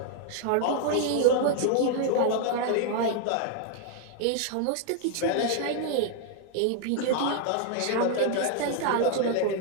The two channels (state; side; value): different; both; correlation 0.00